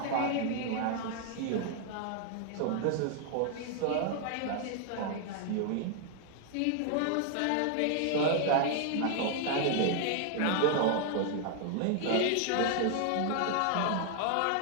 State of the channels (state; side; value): different; both; correlation 0.00